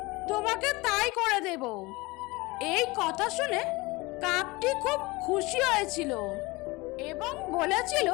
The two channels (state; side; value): quieter; right; 23.1 dB